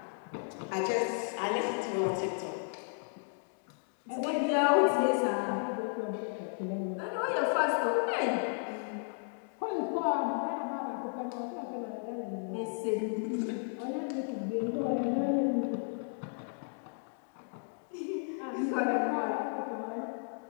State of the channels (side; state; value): right; silent; 55 dB below the other